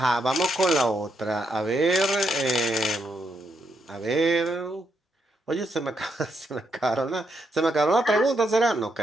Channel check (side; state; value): both; normal; correlation 0.79